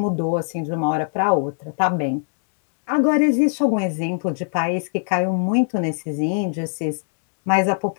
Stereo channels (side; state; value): right; silent; digital silence